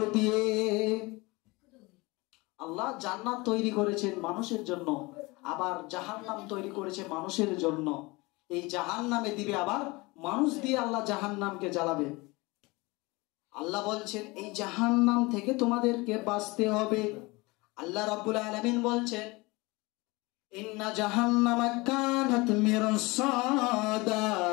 দিয়ে। আল্লাহ জান্নাত তৈরি করেছেন মানুষের জন্য, আবার জাহান্নাম তৈরি করেছে মানুষের জন্য। এই জাহান্নামে দিবে আবার মানুষ দিয়ে, আল্লাহ জাহান্নামকে জ্বালাবে। আল্লাহ বলছেন এই জাহান্নাম থেকে তোমাদেরকে বাঁচতে হবে। আল্লাহ রাব্বুল আলামিন বলছেন, ইন্না জাহান্নামা কানাত মিরসাদা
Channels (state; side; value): quieter; right; 24.0 dB